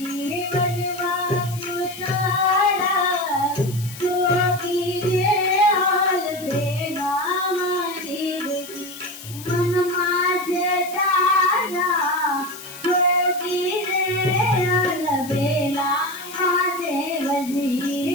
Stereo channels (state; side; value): noise; left; hiss, 14 dB below the sound